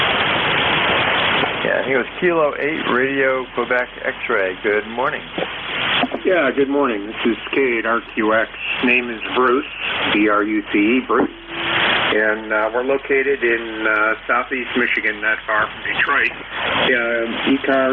Yeah, I think it was Kilo 8 Radio, Quebec X-Ray. Good morning. Yeah, good morning. This is K8RQX. Name is Bruce, B-R-U-C-E, Bruce. And we're located in southeast Michigan, not far from Detroit.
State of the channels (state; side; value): noise; right; hum, 25 dB below the sound